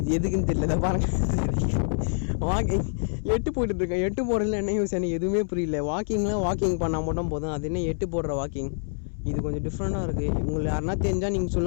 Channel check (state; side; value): silent; right; 61 dB below the other